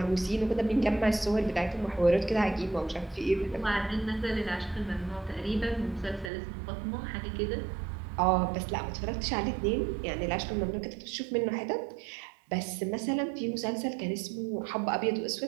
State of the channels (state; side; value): drops out; left; at 6.3 s